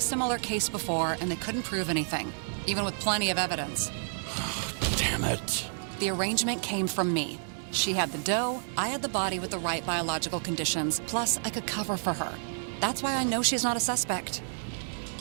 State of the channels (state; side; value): silent; left; digital silence